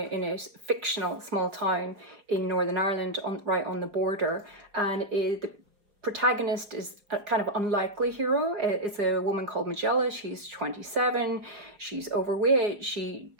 a fictional small town in Northern Ireland, right on the border, and the protagonist is a kind of unlikely hero. It's a woman called Magella. She's 27. She's overweight. She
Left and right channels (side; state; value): left; late; 4.8 ms